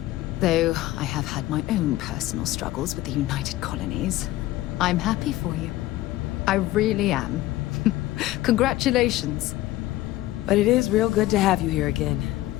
Though I have had my own personal struggles with the United Colonies. I'm happy for you. I really am. Congratulations. But it is real good to have you here again.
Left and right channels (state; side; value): quieter; right; 16.4 dB